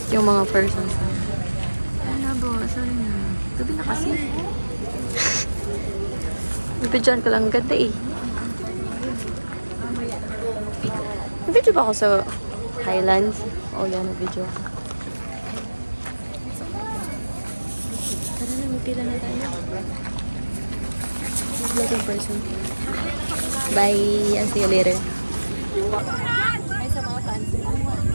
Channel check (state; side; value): inverted; both; correlation -1.00